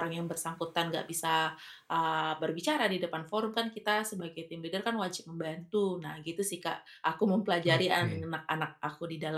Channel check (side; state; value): both; identical; correlation 1.00